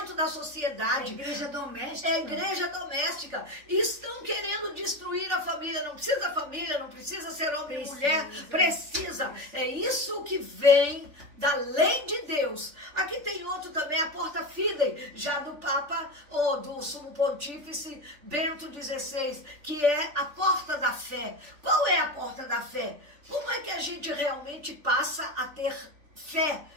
da sociedade. É igreja doméstica. É igreja doméstica. E estão querendo destruir a família. Não precisa família, não precisa ser homem e mulher. Precisa. É isso que vem da lei de Deus. Aqui tem outro também, a Porta Fidei, já do Papa, ou do Sumo Pontífice Bento XVI, que é a porta da fé. Qual é a porta da fé? Como é que a gente realmente passa a ter fé?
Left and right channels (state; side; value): late; left; 3.4 ms